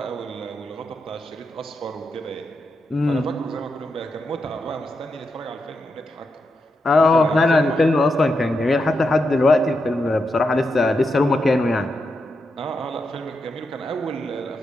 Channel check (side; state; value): both; normal; correlation 0.85